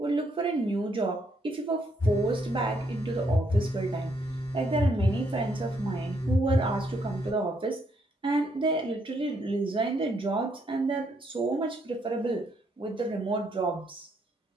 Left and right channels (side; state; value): both; normal; correlation 0.73